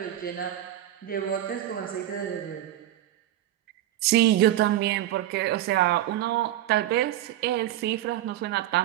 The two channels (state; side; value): quieter; left; 13.3 dB